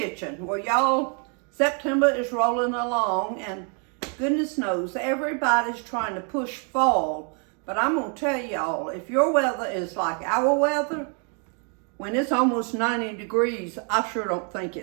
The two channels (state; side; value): quieter; left; 39.8 dB